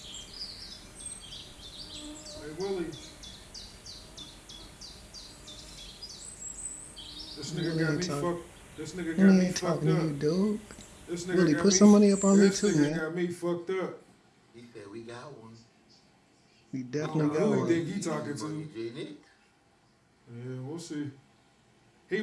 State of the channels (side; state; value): both; identical; correlation 1.00